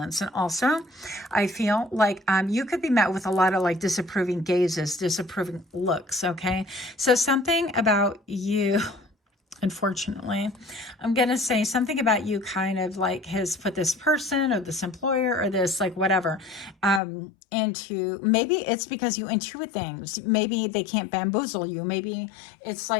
And also, I feel like you could be met with a lot of like disapproving gazes, disapproving looks, okay? So something about you, unfortunately, I'm going to say something about you kind of like has put this person or this employer or this like whatever into, maybe it's because you intuit things. Maybe they can't bamboozle you. Maybe it's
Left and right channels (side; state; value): right; drops out; at 17.0 s